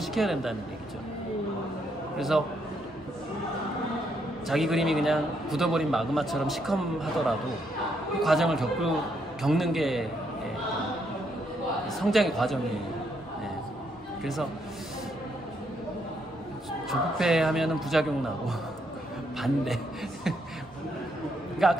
된다는 얘기죠. 그래서 자기 그림이 그냥 굳어버린 마그마처럼 시커하더라도 그 과정을 겪는 게 성장의 과정이에요. 그래서 조급해하면은 부작용 나고 반대. 그러니까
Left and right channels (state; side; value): normal; both; correlation 0.75